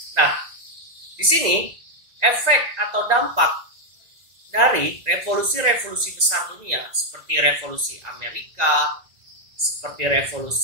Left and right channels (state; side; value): late; left; 2.0 ms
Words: Nah, di sini efek atau dampak dari revolusi-revolusi besar dunia seperti revolusi Amerika, seperti